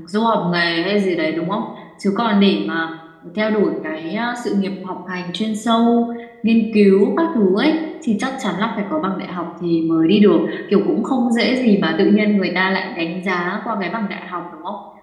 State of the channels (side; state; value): both; identical; correlation 1.00